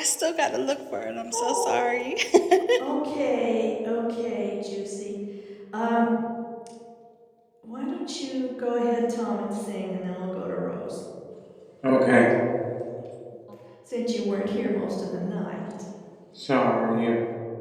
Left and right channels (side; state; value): both; identical; correlation 1.00